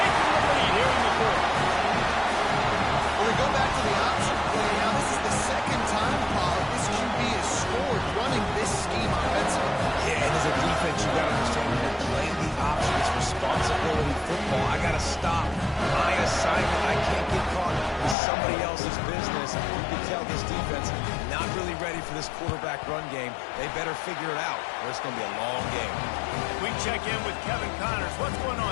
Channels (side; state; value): right; drops out; at 18.2 s